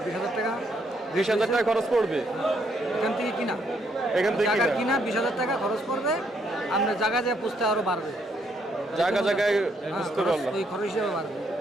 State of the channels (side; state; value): both; normal; correlation 0.73